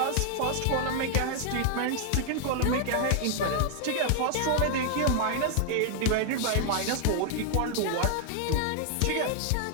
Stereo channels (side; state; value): both; different; correlation 0.00